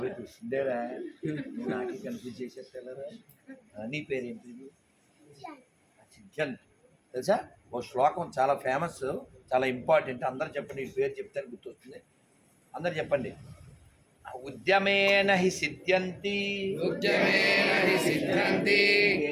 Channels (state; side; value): identical; both; correlation 1.00